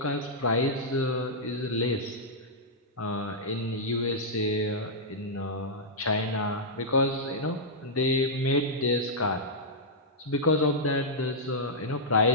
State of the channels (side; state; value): both; normal; correlation -0.09